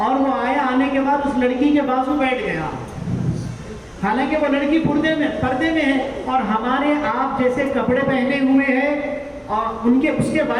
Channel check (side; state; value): both; identical; correlation 1.00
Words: وہ آیا, آنے کے بعد اس لڑکی کے بازو بیٹھ گیا, حالانکہ وہ لڑکی پردے میں ہے اور ہمارے آپ جیسے کپڑے پہنے ہوئے ہیں, اور اس کے